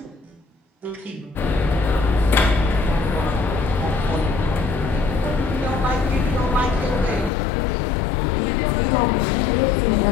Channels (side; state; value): right; drops out; at 7.3 s